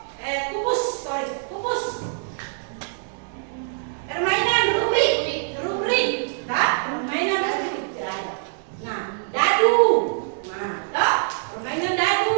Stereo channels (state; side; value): silent; left; digital silence